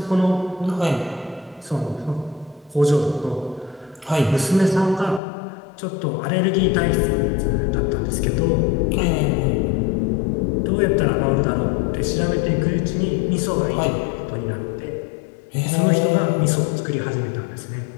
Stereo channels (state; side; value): drops out; right; at 5.2 s